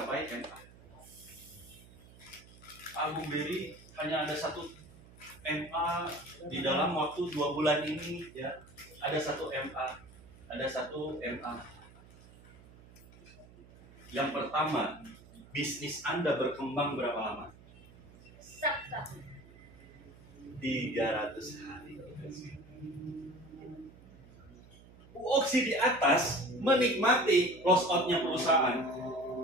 MA. Agung Beri hanya ada satu MA di dalam waktu 2 bulan ini ya. Ada satu MA. Ada satu MA. Yang pertama, bisnis Anda berkembang berapa lama? 300 hari. Bu Oksi di atas menikmati loss out-nya perusahaan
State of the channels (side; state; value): right; noise; hum, 22 dB below the sound